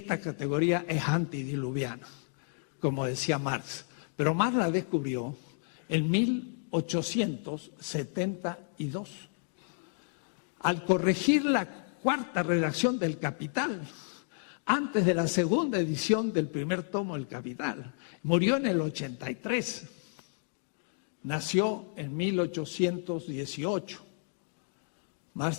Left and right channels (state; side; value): silent; right; digital silence